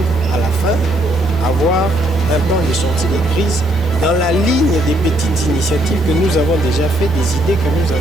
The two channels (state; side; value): normal; both; correlation 0.71